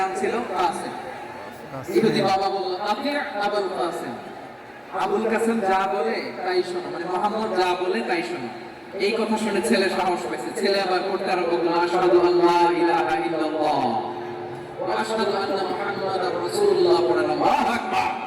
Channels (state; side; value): identical; both; correlation 1.00